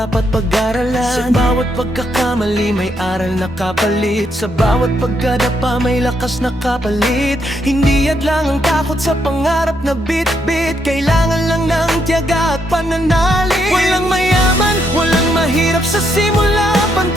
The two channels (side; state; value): both; normal; correlation 0.77